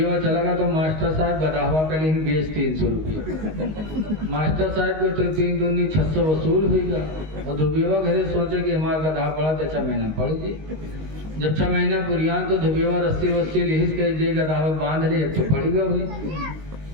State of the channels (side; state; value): left; late; 19 ms